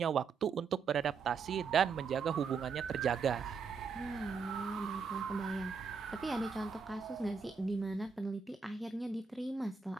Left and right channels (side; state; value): left; quieter; 5.5 dB